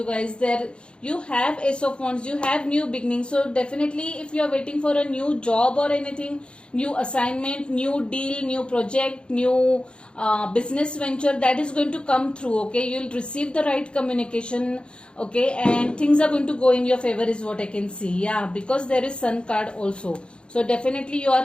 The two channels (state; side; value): late; right; 0.055 ms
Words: guys, there you have Ace of Wands, you have new beginnings. So definitely if you are waiting for a new job or anything, new assignment, new deal, new project, new business venture, that is going to come through, okay? You'll receive the right communication, okay, and things are going to go in your favor is what I can see. Yeah, because there is Sun card also, so definitely you are